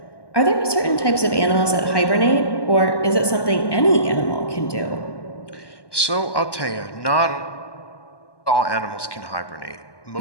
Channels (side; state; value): right; late; 1.1 ms